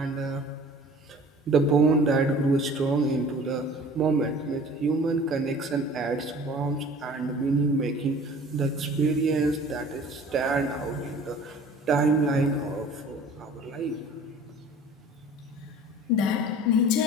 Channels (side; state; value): both; normal; correlation 0.46